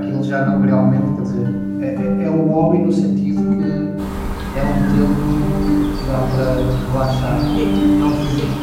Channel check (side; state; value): both; identical; correlation 1.00